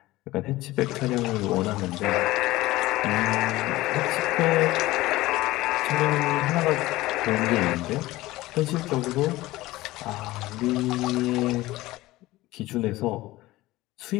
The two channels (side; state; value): right; quieter; 18.2 dB